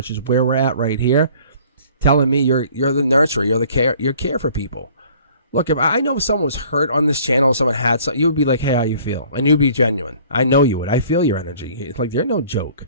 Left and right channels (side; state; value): both; inverted; correlation -0.53